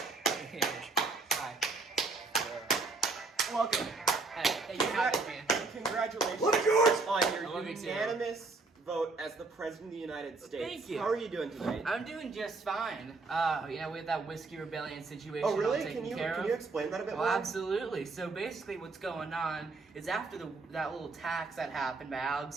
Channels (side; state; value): left; quieter; 3.7 dB